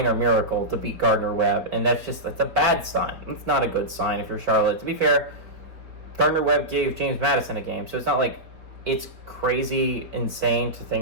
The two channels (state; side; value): late; left; 4.3 ms